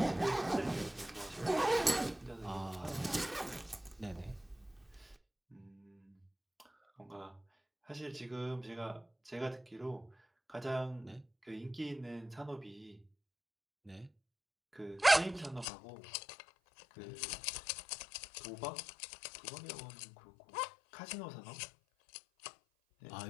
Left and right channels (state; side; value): drops out; right; at 15.7 s